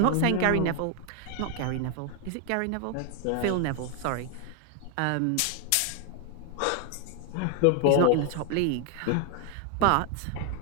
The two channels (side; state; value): both; different; correlation 0.00